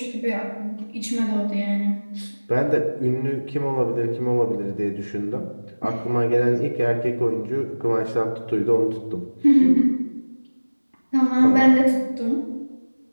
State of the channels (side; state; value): both; inverted; correlation -1.00